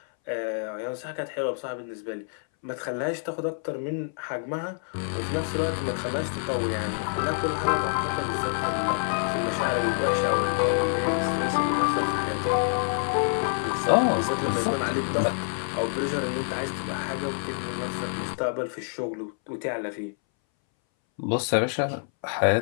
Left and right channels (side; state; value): right; silent; 60 dB below the other